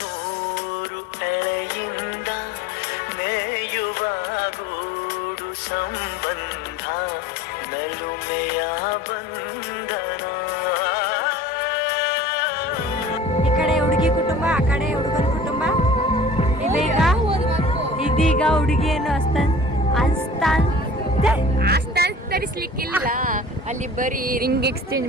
ನೂರು ಎಳೆಯಿಂದ ಮೇಯುವ ಗೂಡು ಸಂಬಂಧ ನಲುಮೆಯ ಬಂಧನ. ಈ ಕಡೆ ಹುಡುಗಿ ಕುಟುಂಬ, ಆ ಕಡೆ ಹುಡುಗನ ಕುಟುಂಬ. ಇದೀಗ ಹುಡುಗಿಯನ್ನು ತರಿಸ್ಲಿಕ್ಕಿಲ್ಲ, ಅಲ್ಲಿ ಬರೀ ರಿಂಗ್ ಎಕ್ಸ್ಚೇಂಜ್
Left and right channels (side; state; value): both; normal; correlation 0.44